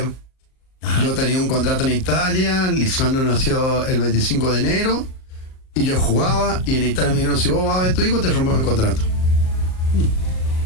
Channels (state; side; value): late; right; 38 ms